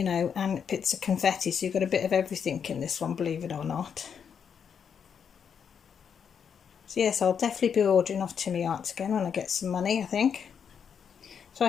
know, and bits of confetti, so you've got a bit of everything in this one, believe it or not. So yes, I'll definitely be ordering off Tinmi Art again when I get some money, I think. So I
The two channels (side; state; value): right; quieter; 7.3 dB